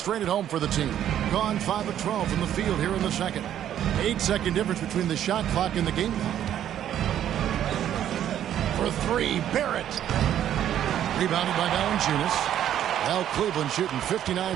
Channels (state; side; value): quieter; left; 10.8 dB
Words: at home for the team. Gone 5 of 12 from the field here in the second. 8-second difference between the shot clock and the game clock. For 3, Barrett. Rebounded by Valanciunas. Well, Cleveland shooting